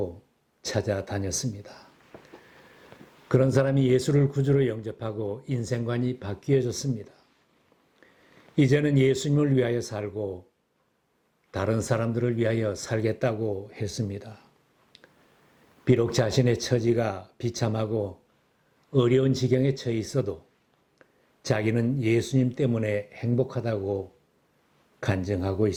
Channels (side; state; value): both; identical; correlation 1.00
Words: 찾아다녔습니다. 그런 사람이 예수를 구주로 영접하고 인생관이 바뀌어졌습니다. 이제는 예수님을 위하여 살고 다른 사람들을 위하여 살겠다고 했습니다. 비록 자신의 처지가 비참하고 어려운 지경에 처해 있어도 자기는 예수님 때문에 행복하다고 간증하고